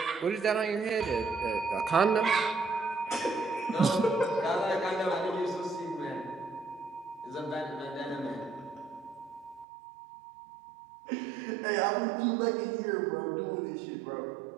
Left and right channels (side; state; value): left; drops out; at 9.7 s